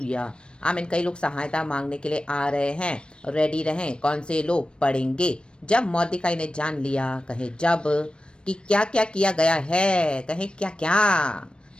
आमीन। कई लोग सहायता मांगने के लिए आ रहे हैं, रेडी रहें। कौन से लोग? पढ़ेंगे। जब मोर्देकाई ने जान लिया, कहे जब, कि क्या क्या किया गया है, कहे क्या क्या,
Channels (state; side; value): late; right; 0.055 ms